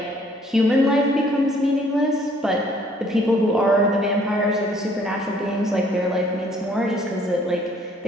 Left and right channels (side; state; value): both; normal; correlation 0.61